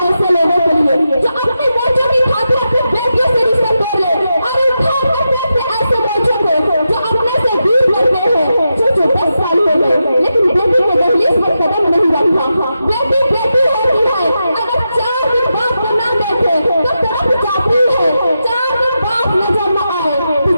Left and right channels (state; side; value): inverted; both; correlation -0.88